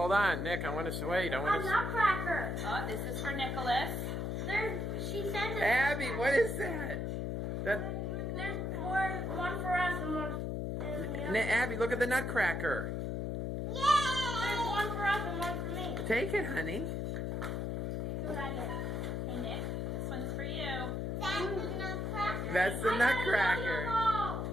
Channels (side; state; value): left; noise; hum, 1 dB below the sound